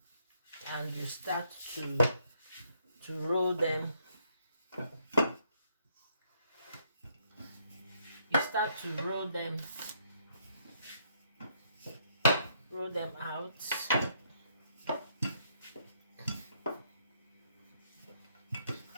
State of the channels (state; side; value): inverted; both; correlation -0.72